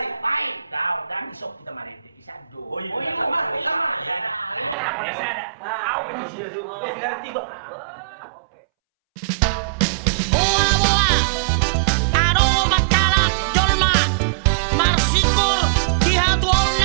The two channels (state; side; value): drops out; left; at 4.8 s